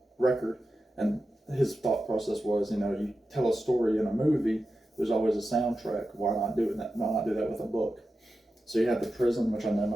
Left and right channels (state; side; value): normal; both; correlation 0.91